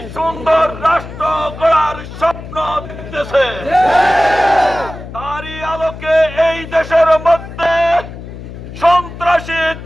সুন্দর রাষ্ট্র গড়ার স্বপ্ন দেখতেছে। তারই আলোকে এই দেশের মধ্যে সন্ত্রাসী,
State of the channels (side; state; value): left; noise; hum, 12 dB below the sound